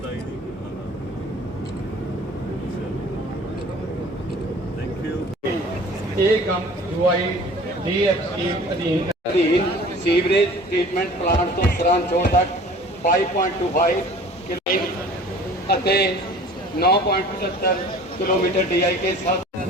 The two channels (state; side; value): normal; both; correlation 0.46